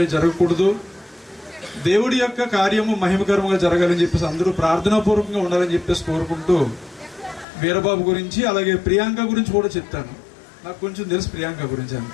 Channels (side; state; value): right; drops out; at 7.5 s